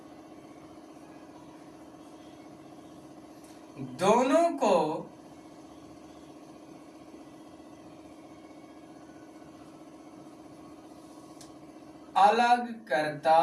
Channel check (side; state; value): both; identical; correlation 1.00